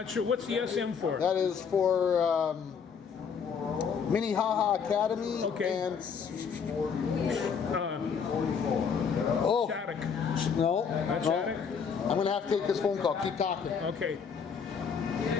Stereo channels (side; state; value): right; quieter; 6.4 dB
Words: sure what's the SM for. That is for Minnehaha Academy. Okay. And oh Shattuck. no, Not no. Shattuck? I'm gonna have to take this phone call. Keep talking. Okay.